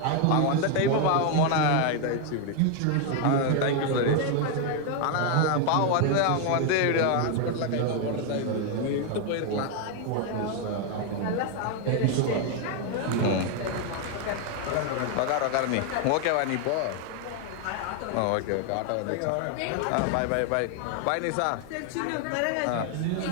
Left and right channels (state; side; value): different; both; correlation 0.01